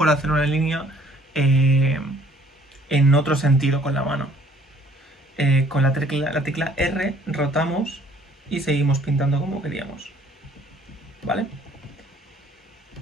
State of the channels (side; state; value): both; normal; correlation 0.59